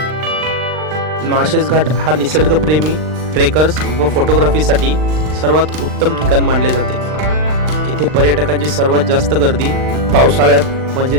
माळशेज घाट हा निसर्गप्रेमी ट्रेकर्स व फोटोग्राफीसाठी सर्वात उत्तम ठिकाण मानले जाते. येथे पर्यटकांची सर्वात जास्त गर्दी पावसाळ्यात म्हणजे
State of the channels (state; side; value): late; left; 39 ms